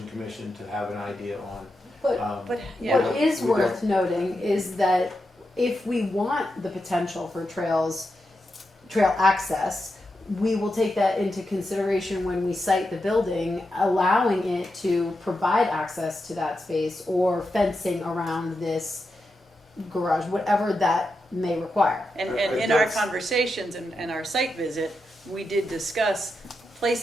commission to have an idea on. But what is worth noting is that if we want the potential for trail access, we will take that into consideration when we site the building, allowing it to provide access to that space or fencing around this garage, whatever that may requue. And in our conversations and our site visit, we did discuss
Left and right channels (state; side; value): normal; both; correlation 0.87